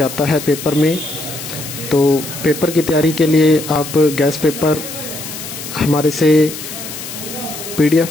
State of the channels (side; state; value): left; noise; hiss, 10 dB below the sound